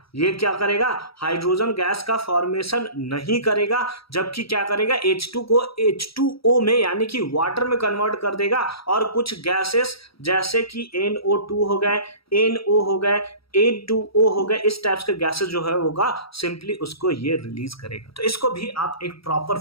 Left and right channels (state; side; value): late; right; 0.76 ms